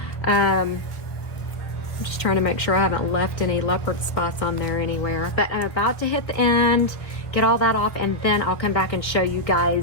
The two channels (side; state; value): right; late; 1.6 ms